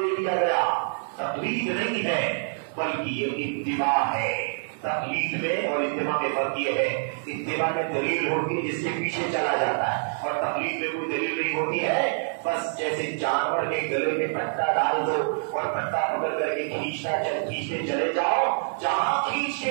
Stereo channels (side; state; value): left; silent; 56 dB below the other